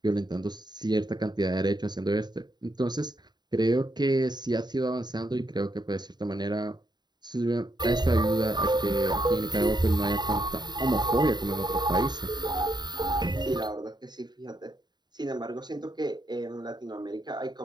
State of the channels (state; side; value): late; left; 0.21 ms